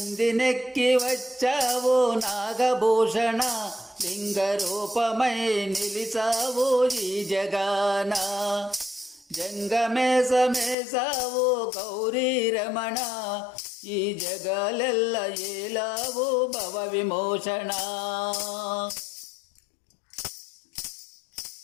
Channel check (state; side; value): drops out; right; at 10.8 s